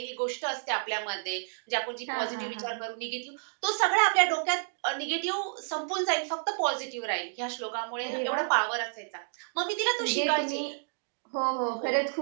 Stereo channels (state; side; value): silent; left; digital silence